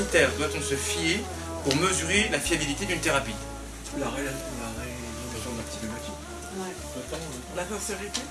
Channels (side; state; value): both; identical; correlation 1.00